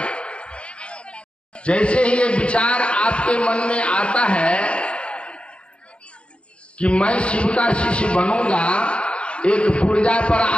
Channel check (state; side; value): late; right; 0.058 ms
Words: जैसे ही ये विचार आपके मन में आता है कि मैं शिव का शिष्य बनूंगा, एक पुर्जा पर